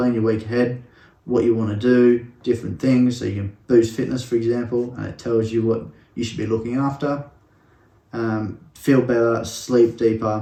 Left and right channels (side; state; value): both; identical; correlation 1.00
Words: your week ahead, what you want to do, different things. So you can boost fitness, for example, and it tells you what you should be looking after. Feel better, sleep deeper,